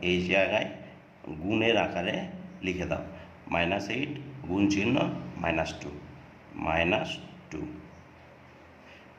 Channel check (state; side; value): identical; both; correlation 1.00